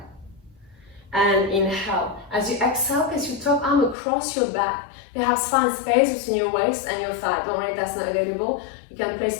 And inhale. As you exhale, place your top arm across your back. Perhaps find space between your waist and your thigh. Don't worry if that's not available. You can place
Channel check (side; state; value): right; drops out; at 4.0 s